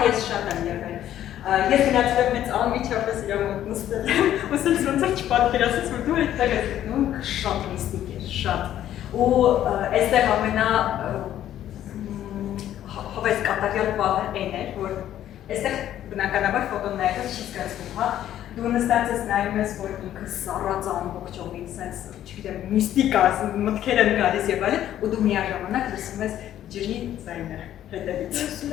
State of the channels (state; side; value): quieter; right; 11.8 dB